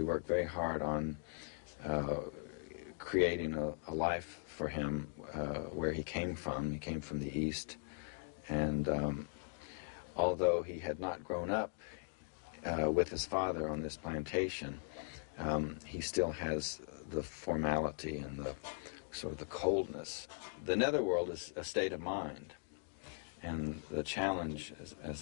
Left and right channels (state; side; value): silent; right; digital silence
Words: worked very hard on creating a life for him where he came from. He came from the East. And although he had not grown up with his father on this plantation, he still has the formality and the sort of the coldness. The netherworld is a state of mind, and the challenge